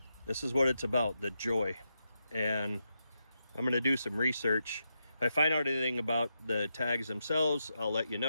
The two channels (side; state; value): both; inverted; correlation -0.85